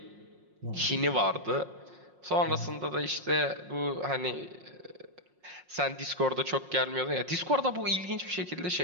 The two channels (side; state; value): left; late; 5.5 ms